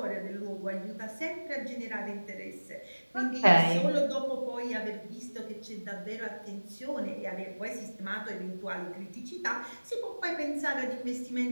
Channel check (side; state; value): both; inverted; correlation -1.00